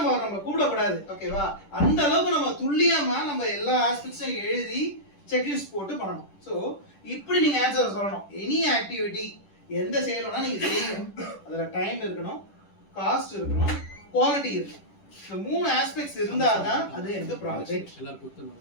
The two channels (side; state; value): right; late; 10 ms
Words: கூப்பிடக்கூடாது. ஓகேவா? அந்த அளவுக்கு நம்ம துல்லியமா நம்ம எல்லா ஆஸ்பெக்ட்ஸையும் எழுதி செக்லிஸ்ட் போட்டு பண்ணணும். ஸோ இப்படி நீங்க ஆன்சர் சொல்லணும். எனி ஆக்டிவிட்டி எந்த செயலோனா நீங்க செய்யணும். அதுல டைம் இருக்கணும், காஸ்ட் இருக்கணும், குவாலிட்டி இருக்கணும். இந்த 3 ஆஸ்பெக்ட்ஸ் இருந்தாதான் அது எந்த ப்ராஜெக்ட்.